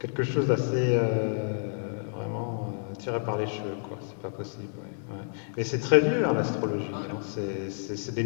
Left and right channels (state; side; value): silent; right; digital silence